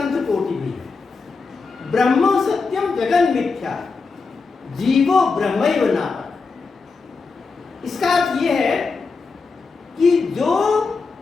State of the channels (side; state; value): right; quieter; 4.5 dB